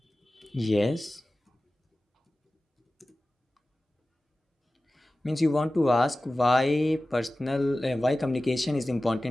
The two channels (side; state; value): both; normal; correlation 0.96